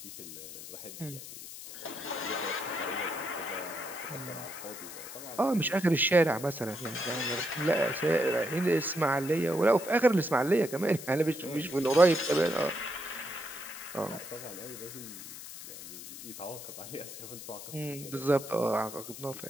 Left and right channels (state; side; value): noise; left; hiss, 12 dB below the sound